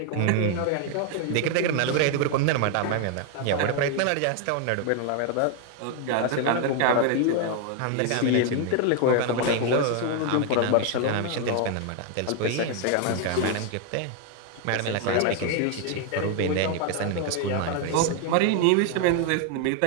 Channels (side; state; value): both; different; correlation 0.00